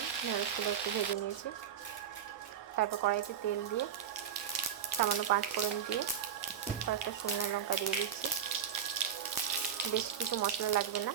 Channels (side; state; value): left; quieter; 8.9 dB